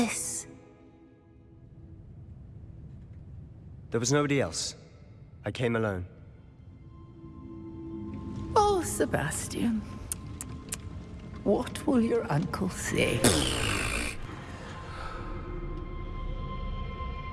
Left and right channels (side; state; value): both; identical; correlation 1.00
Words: There was nobody else. I came alone. Oh, Sebastian. What will your uncle say?